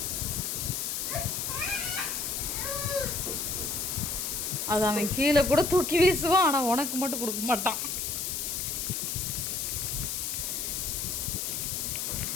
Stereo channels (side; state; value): left; noise; hiss, 2 dB below the sound